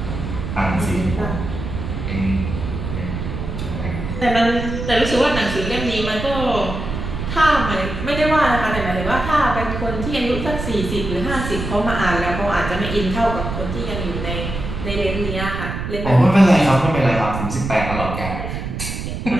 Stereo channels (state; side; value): noise; right; rumble, 5 dB below the sound